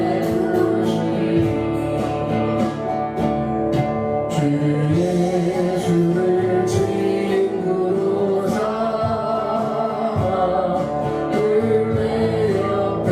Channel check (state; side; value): identical; both; correlation 1.00